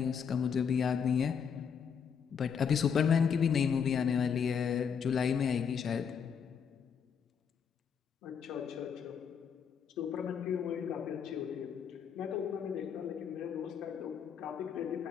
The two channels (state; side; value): quieter; right; 7.1 dB